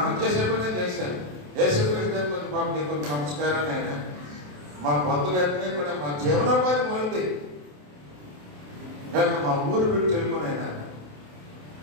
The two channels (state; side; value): late; left; 27 ms